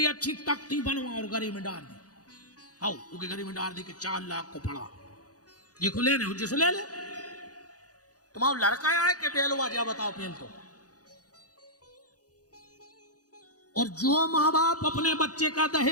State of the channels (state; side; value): late; right; 0.67 ms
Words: अच्छी तख्ती बनवा और गरी में डाल दी। आओ उसके गरी में डाल दी कि 4 लाख को पड़ा, ये खुले ने जिसको ले ले। तुम्हारा लड़का आए कि बेलवा जा बताओ पेल तो। और जो माँ बाप अपने बच्चे का